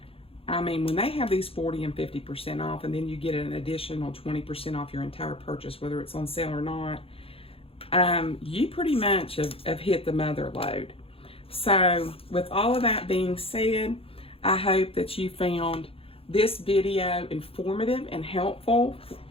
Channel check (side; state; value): right; late; 0.27 ms